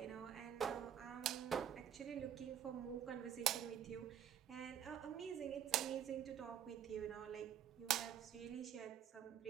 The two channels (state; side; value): quieter; left; 9.2 dB